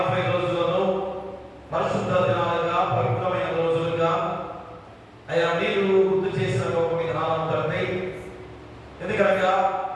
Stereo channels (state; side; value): identical; both; correlation 1.00